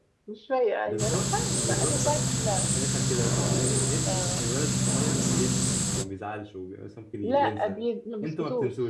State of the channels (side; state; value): both; identical; correlation 1.00